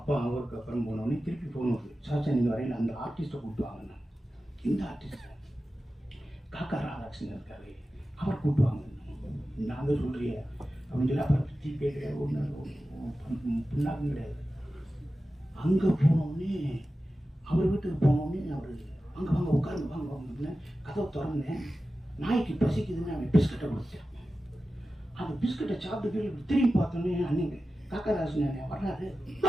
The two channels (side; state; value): both; normal; correlation 0.94